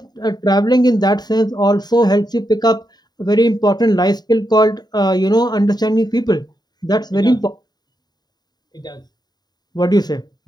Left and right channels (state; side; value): late; right; 0.20 ms